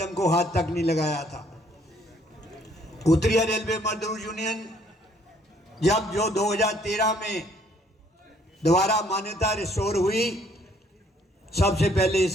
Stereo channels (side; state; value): both; normal; correlation 0.64